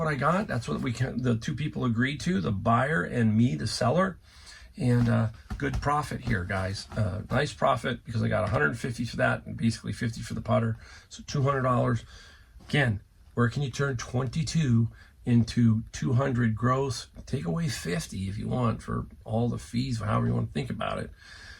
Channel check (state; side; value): identical; both; correlation 1.00